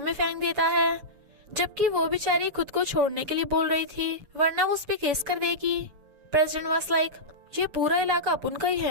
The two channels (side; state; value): left; late; 7.1 ms